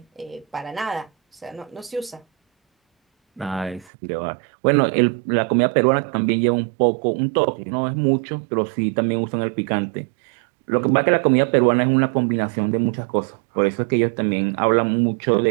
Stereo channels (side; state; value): left; drops out; at 3.9 s